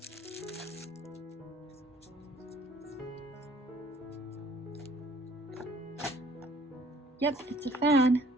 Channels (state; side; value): normal; both; correlation 0.57